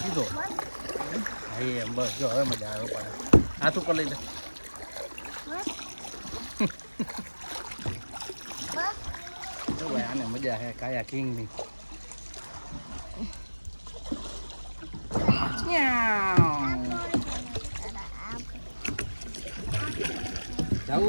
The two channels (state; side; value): inverted; both; correlation -1.00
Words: સીધો. હા એમ બસ જો હવે મજા આવે. પાડે હાથ ઉપર લઈ લે. આને મજા હે કાયાકિંગ ની.